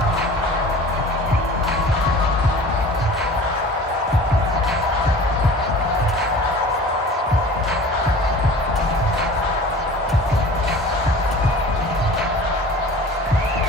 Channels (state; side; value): normal; both; correlation 0.42